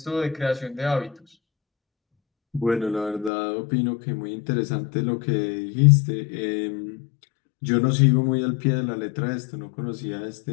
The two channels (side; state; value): right; drops out; at 3.3 s